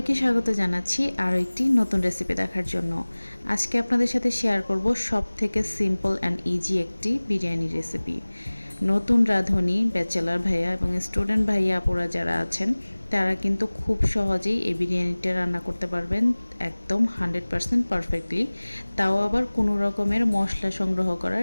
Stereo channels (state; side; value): inverted; both; correlation -1.00